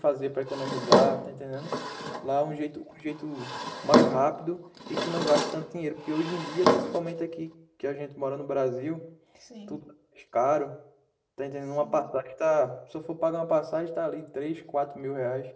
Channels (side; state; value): both; identical; correlation 1.00